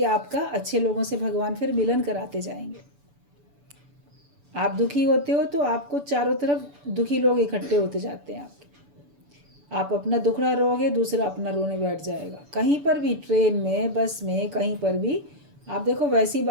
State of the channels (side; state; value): left; late; 6.9 ms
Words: आपका अच्छे लोगों से भगवान फिर मिलन कराते जाएंगे। आप दुखी होते हो तो आपको चारों तरफ दुखी लोग इकट्ठे होते जाते हैं आपके। आप अपना दुखड़ा रोओगे, दूसरा अपना रोने बैठ जाएगा। कहीं पर भी, ट्रेन में, बस में, कहीं पर भी आप देखो वैसी